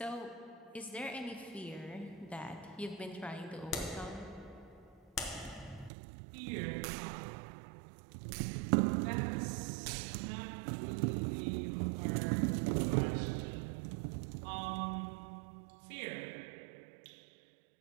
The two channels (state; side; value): drops out; left; at 5.9 s